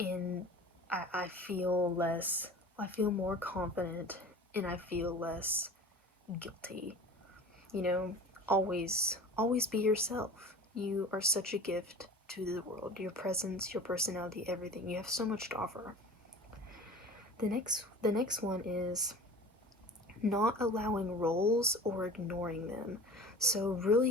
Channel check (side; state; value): both; normal; correlation 0.40